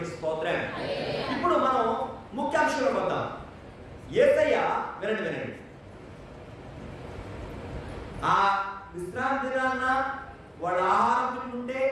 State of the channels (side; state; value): both; identical; correlation 1.00